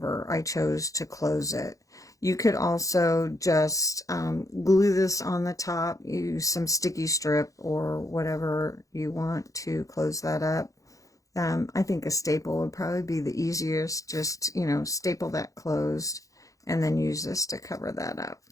I chose to close it. You could also just glue this on the top, use some sticky strip or whatever you want to close that up. I think a staple would probably be the easiest. Just, you know, staple that closed and then use this to cover that up.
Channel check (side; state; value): right; late; 0.16 ms